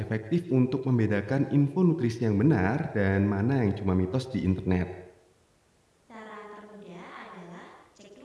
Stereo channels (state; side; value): identical; both; correlation 1.00